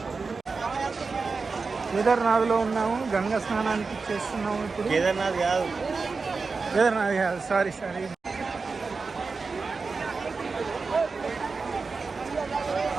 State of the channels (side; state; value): left; quieter; 4.4 dB